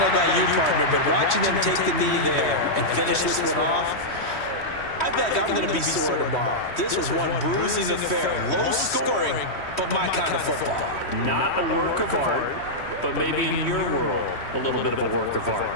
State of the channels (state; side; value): late; right; 3.1 ms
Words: know about you, partner, but watching them take the knee there and finish this one off, I feel like I'm going to be sore tomorrow. This was one bruising affair. Low scoring, but my kind of football. Not a work of art, but maybe in your world, a little bit of a work of art.